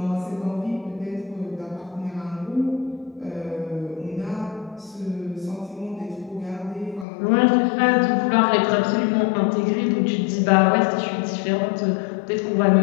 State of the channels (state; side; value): drops out; right; at 7.1 s